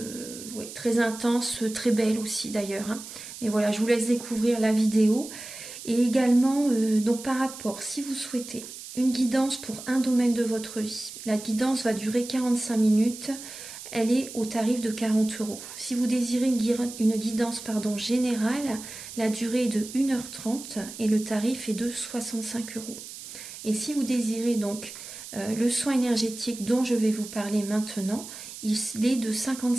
ouais, très intenses, très belles aussi d'ailleurs, hein. Mais voilà, je vous laisse découvrir la vidéo. Et également, donc par rapport, si vous souhaitez une guidance pour un domaine de votre vie, la guidance va durer 45 minutes. Elle est au tarif de 40 euros. Si vous désirez une guidance générale, la durée est de 1h30 et le tarif est de 65 euros. Et si vous désirez donc le soin énergétique dont je vais vous parler maintenant, il est de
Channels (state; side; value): noise; right; hiss, 12 dB below the sound